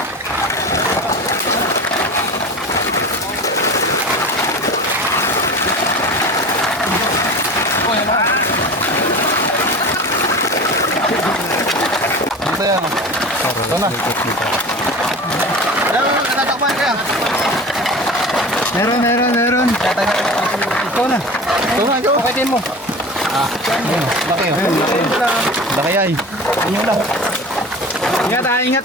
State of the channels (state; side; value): normal; both; correlation 0.34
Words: Ito yan. Ito na. Tatakpan kaya. Meron. Ito na. Ito. Pakitin mo. Laki yun. Laki ay. Inyo lang.